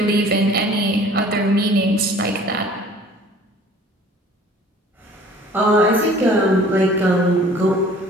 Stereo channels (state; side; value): normal; both; correlation 0.51